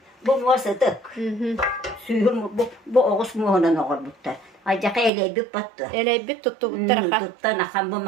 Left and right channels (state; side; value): drops out; left; at 5.1 s